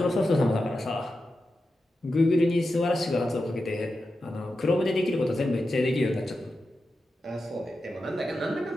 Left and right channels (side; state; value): both; normal; correlation 0.90